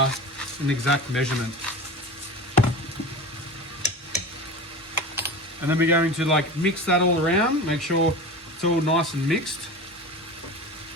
exact measurement. And then we're going to mix that all around, make sure it's all nice and mixed.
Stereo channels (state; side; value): normal; both; correlation 0.31